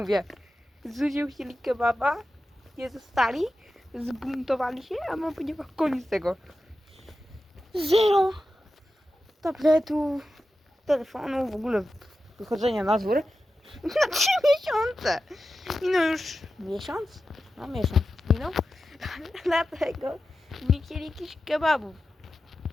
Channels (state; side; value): normal; both; correlation 0.92